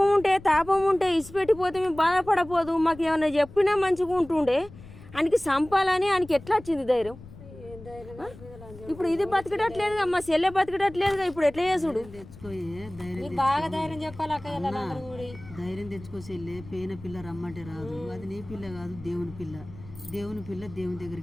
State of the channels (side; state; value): left; noise; rumble, 17 dB below the sound